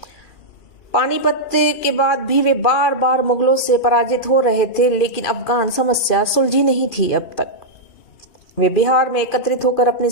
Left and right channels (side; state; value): right; late; 2.4 ms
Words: पानीपत के बाद भी वे बार बार मुगलों से पराजित हो रहे थे, लेकिन अफगान समस्या सुलझी नहीं थी अब तक। वे बिहार में एकत्रित होकर अपनी